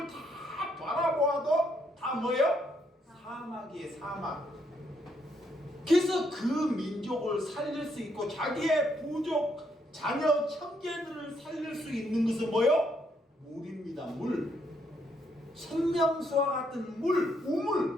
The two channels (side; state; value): both; normal; correlation 0.74